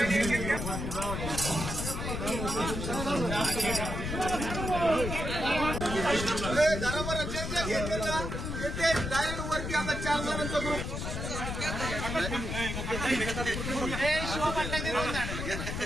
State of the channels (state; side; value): noise; left; rumble, 4 dB below the sound